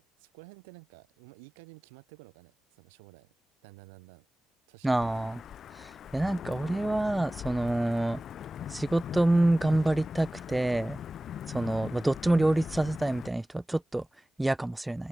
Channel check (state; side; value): normal; both; correlation 0.98